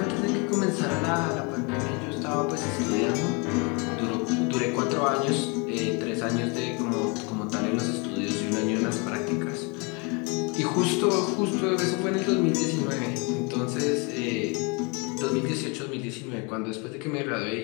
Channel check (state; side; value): quieter; right; 31.0 dB